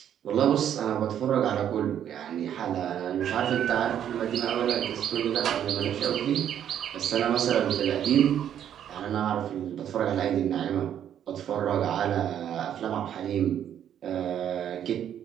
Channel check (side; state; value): left; quieter; 9.9 dB